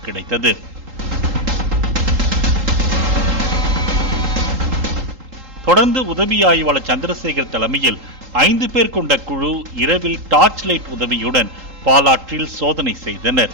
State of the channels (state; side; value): late; left; 3.8 ms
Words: கிடைத்தது. தொடர்ந்து உதவி ஆய்வாளர் சந்திரசேகர் தலைமையில் 5 பேர் கொண்ட குழு இரவில் டார்ச் லைட் உதவியுடன் பாலாற்றில் சோதனை செய்தனர்.